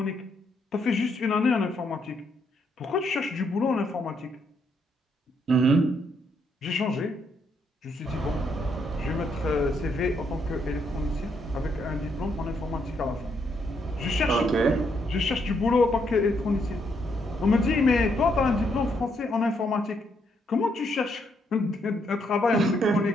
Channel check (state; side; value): normal; both; correlation 0.75